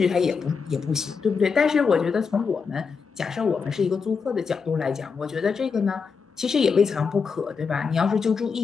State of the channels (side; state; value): right; quieter; 5.5 dB